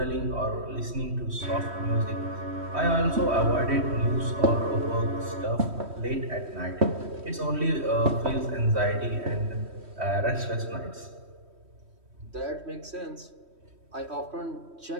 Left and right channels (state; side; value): late; left; 3.1 ms